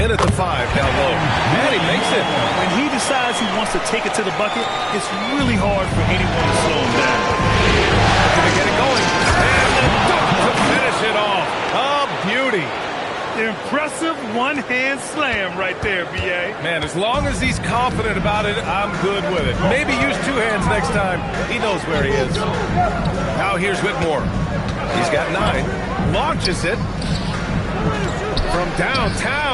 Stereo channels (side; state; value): both; identical; correlation 1.00